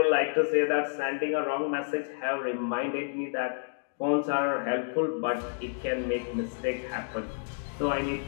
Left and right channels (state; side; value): silent; right; digital silence